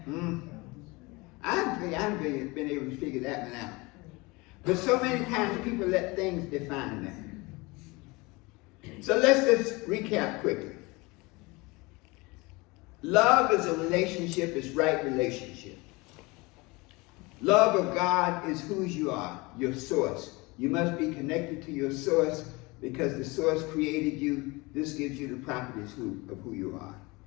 I've been able to figure that one out. But so many times people let things define them. So let's just recap quickly. Love is a relationship, it's right relationship. Love of God is who you are, your source. You must be connected to your source because the source created you. This gives you the properties of who you are.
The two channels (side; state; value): right; quieter; 24.5 dB